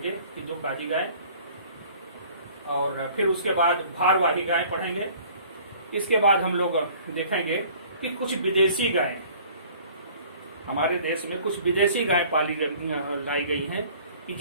कि दुर्काजी गाय, और फिर उसके बाद भारवाही गाय पढ़ेंगे। इसके बाद हम लोग देखेंगे कि कुछ विदेशी गाय, हमारे देश में कुछ विदेशी गाय लाई गई हैं कि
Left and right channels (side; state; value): both; inverted; correlation -0.52